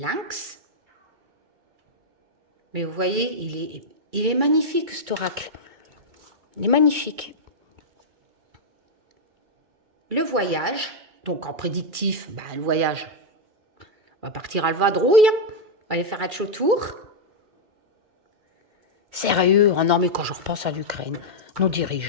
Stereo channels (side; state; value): left; late; 2.4 ms